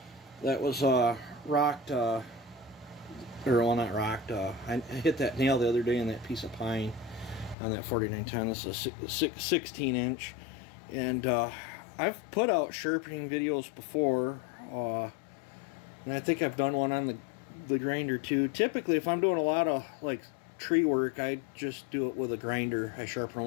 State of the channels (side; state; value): right; drops out; at 7.6 s